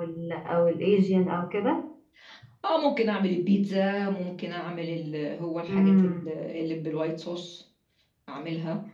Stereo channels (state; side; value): identical; both; correlation 1.00